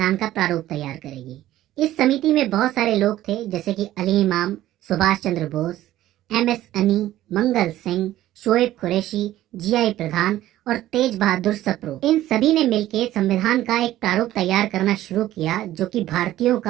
का प्रारूप तैयार करेगी। इस समिति में बहुत सारे लोग थे जैसे कि अली इमाम, सुभाष चंद्र बोस, MS अनी, मंगल सिंह, शोएब कुरैशी, GI प्रधान और तेज बहादुर सप्रू। इन सभी ने मिलकर संविधान का एक प्रारूप तैयार करना शुरू किया जो कि भारतीयों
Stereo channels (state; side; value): quieter; left; 14.2 dB